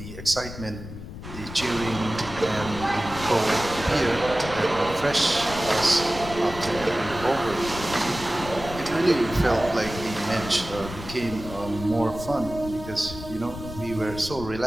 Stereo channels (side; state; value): left; noise; rumble, 11 dB below the sound